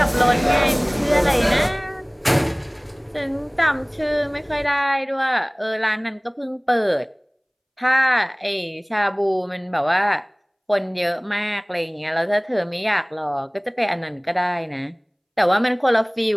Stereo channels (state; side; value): identical; both; correlation 1.00